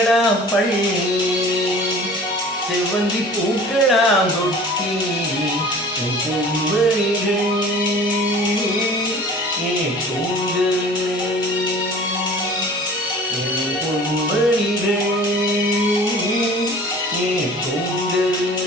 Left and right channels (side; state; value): both; normal; correlation 0.44